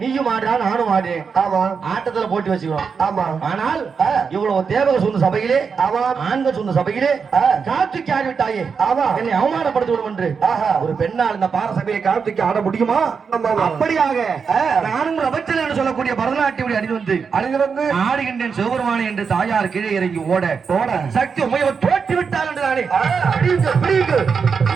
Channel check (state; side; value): quieter; left; 5.8 dB